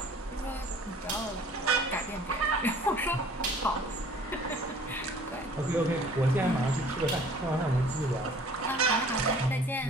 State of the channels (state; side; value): normal; both; correlation 0.51